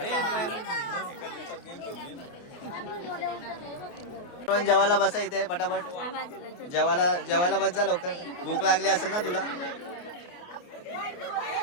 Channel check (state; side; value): late; right; 29 ms